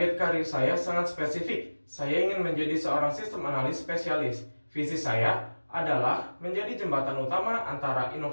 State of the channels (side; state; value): both; inverted; correlation -1.00